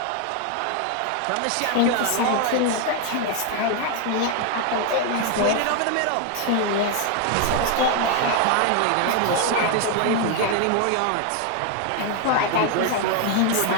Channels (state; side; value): different; both; correlation 0.01